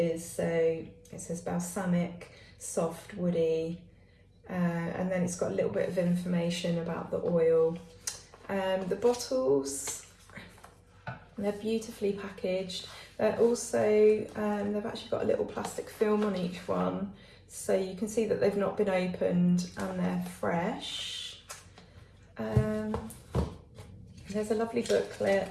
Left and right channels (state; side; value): identical; both; correlation 1.00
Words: So it says balsamic, soft, woody, and then it's got a little bit of information about the oil. The bottles, they're beautifully packaged. They're also, they've actually got a little plastic film on each one, so you can see that they've not been opened and they're fresh. There's a lovely